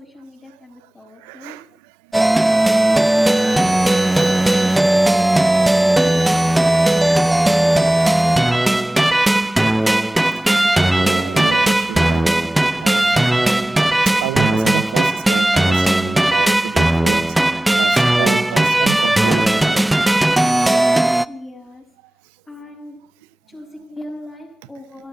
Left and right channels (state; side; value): normal; both; correlation 0.97